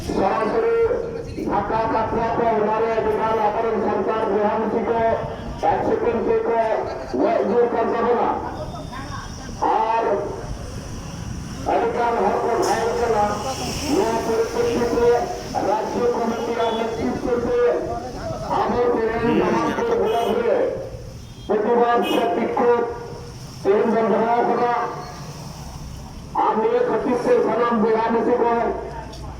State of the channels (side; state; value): both; identical; correlation 1.00